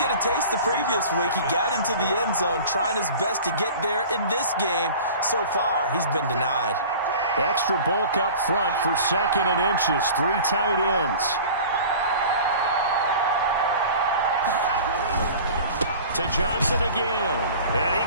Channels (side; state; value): both; inverted; correlation -0.41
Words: a taste the previous week. He got into the end zone trying his best to get there in this game. So far, he's been denied. Extra bulk up front for 2nd and inches. 3 tight ends. To Johnson again. And he